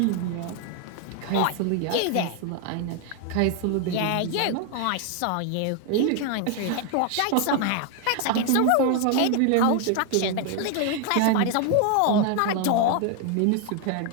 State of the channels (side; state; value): both; different; correlation 0.01